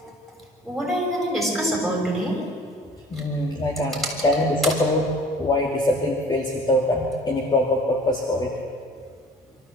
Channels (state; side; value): normal; both; correlation 0.48